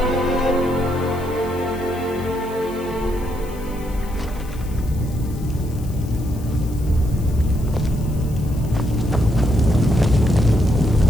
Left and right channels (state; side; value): noise; left; hiss, 21 dB below the sound